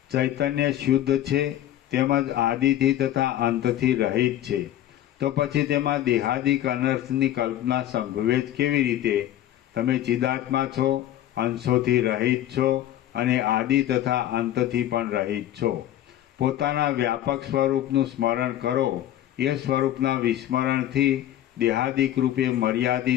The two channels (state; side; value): quieter; right; 12.5 dB